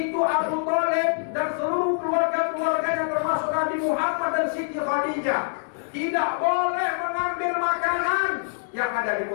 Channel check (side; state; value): right; silent; digital silence